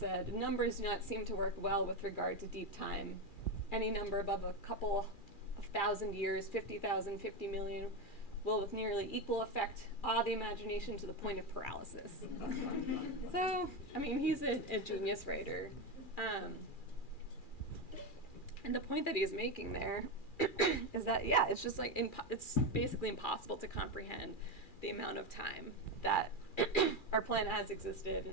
"Numbers do not seem to work well with regard to deep time. Any number above a couple of thousand years, 50,000, 50 million, will with nearly equal effect awe the imagination to the point of paralysis. So, I mean, he's a genius writer. And the point that he's making there is that, yeah, it's just like, it's basically impossible to comprehend the amount of time that our planet has existed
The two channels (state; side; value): late; right; 2.4 ms